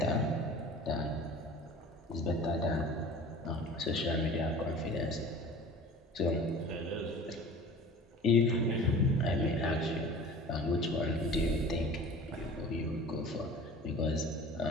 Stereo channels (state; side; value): normal; both; correlation 0.41